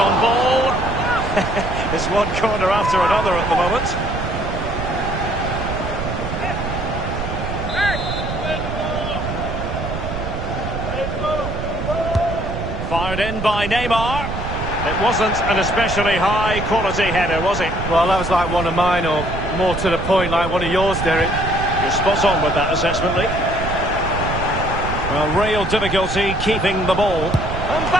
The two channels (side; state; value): right; noise; rumble, 5 dB below the sound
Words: ball. It's one corner after another at the moment. Fired in by Neymar. It wasn't an especially high-quality header, was it? Well, that was like one of mine, or more to the point, like one of yours, Derek. You're spot on with that assessment, Lee. Well, real difficulty keeping the ball.